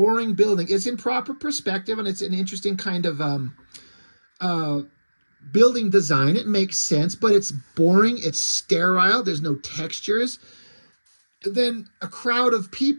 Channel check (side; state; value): both; inverted; correlation -1.00